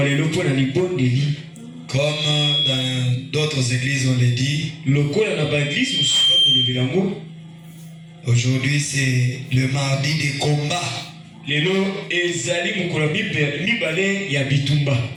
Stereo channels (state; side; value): identical; both; correlation 1.00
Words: Comme dans d'autres églises on l'a dit. Aujourd'hui c'est le mardi des combats.